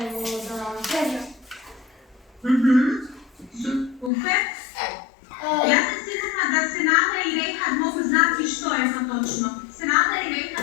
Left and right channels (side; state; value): right; drops out; at 4.1 s